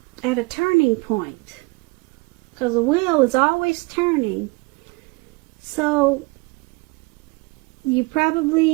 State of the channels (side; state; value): left; quieter; 27.3 dB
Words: a turning point. Because the wheel is always turning. So you